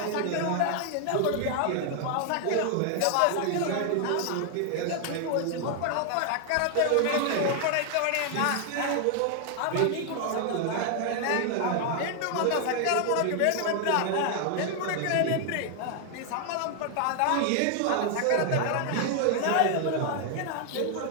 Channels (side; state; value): both; different; correlation 0.00